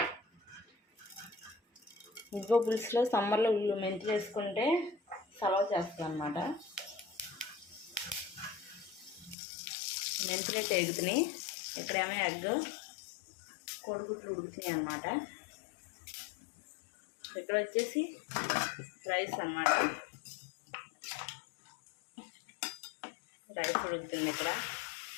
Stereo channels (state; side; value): drops out; right; at 9.3 s